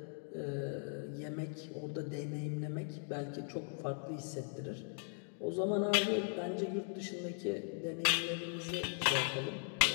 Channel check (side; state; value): right; silent; 52 dB below the other